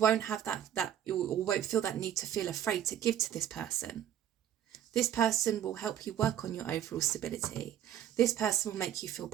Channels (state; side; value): quieter; left; 10.7 dB